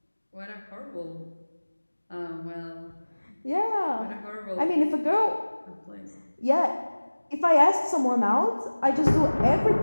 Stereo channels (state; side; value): inverted; both; correlation -1.00